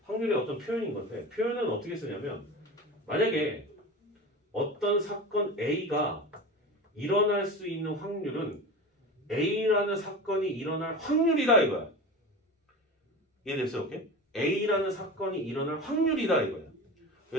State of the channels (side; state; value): both; normal; correlation 0.30